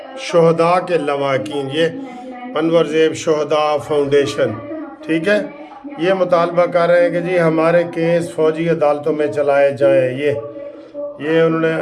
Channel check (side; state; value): both; identical; correlation 1.00